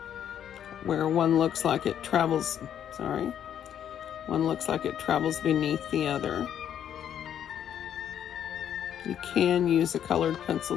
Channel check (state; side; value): quieter; right; 9.7 dB